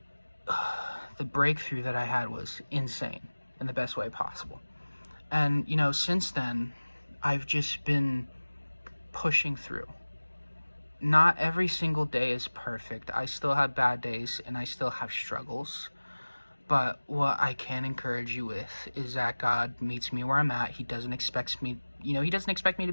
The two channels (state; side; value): inverted; both; correlation -1.00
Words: the breakthrough that I had was insane in the best way possible. And, you know, since then, I've just been pushing through. Not every single day is perfect. I still have bad days and I still have struggles. But what I can encourage you with is that God meets me where I'm at. He doesn't expect me, he doesn't expect me to